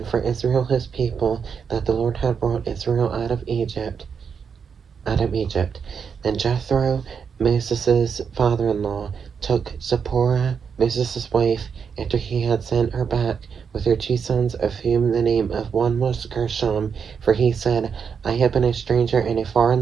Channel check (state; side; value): quieter; left; 6.5 dB